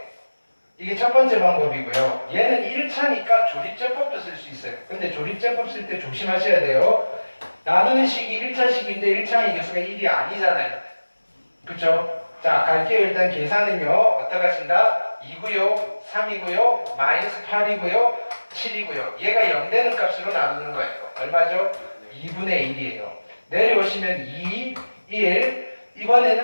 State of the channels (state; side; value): inverted; both; correlation -1.00